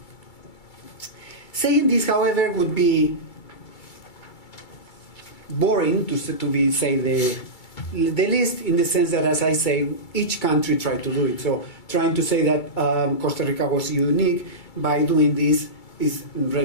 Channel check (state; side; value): late; right; 2.3 ms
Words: Saying this, however, would be boring to say the least, in the sense that, as I say, each country tried to do it. So trying to say that Costa Rica was unique by doing this is